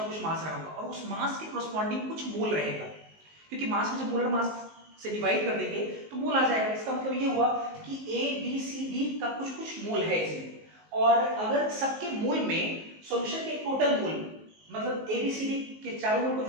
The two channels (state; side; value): late; left; 19 ms